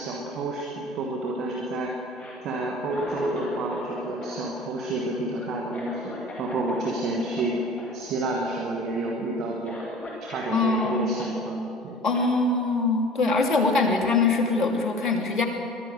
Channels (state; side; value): normal; both; correlation 0.42